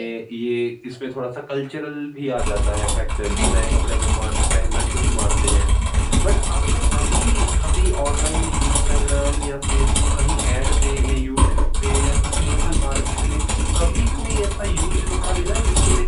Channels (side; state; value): both; identical; correlation 1.00